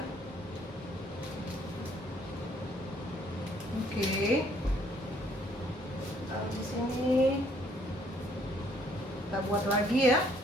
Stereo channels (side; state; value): both; normal; correlation 0.64